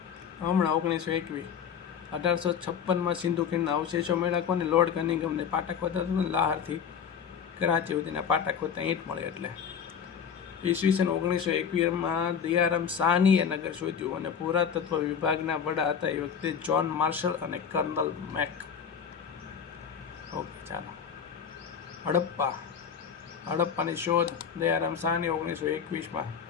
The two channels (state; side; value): quieter; right; 7.4 dB